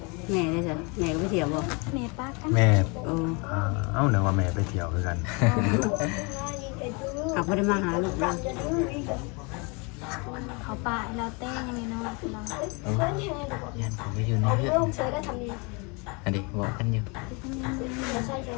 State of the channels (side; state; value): right; quieter; 30.7 dB